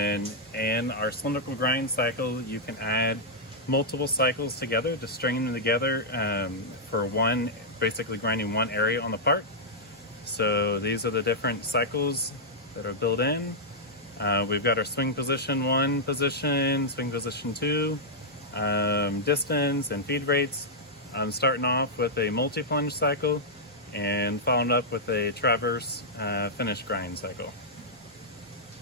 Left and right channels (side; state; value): both; normal; correlation -0.08